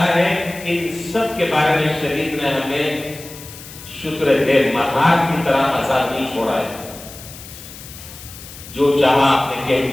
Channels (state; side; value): noise; left; hiss, 16 dB below the sound